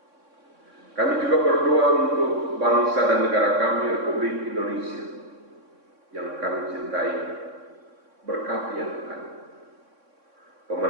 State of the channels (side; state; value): left; late; 3.6 ms